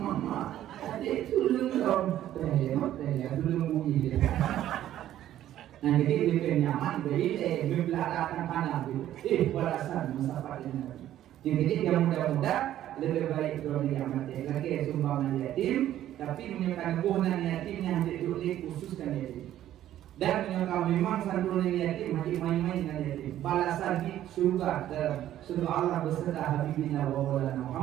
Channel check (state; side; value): quieter; left; 12.4 dB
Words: mama adik sulung dong, tanya sulung bunyi dia. Nah jadi lebih nyaman bagi membelakangkan panah itu. Balasan masalah ini. Jadi yang muda-muda lebih baik kalau dia mati. Lagi sumbangan yatim, tapi menyebabkan kebunan yatimnya hanya khususkan yatim. Dan menyebabkan memang santunan yatim hanya main-main dengan yatim. Balasan di surga dalam surga Allah beserta Habibina wa Maulana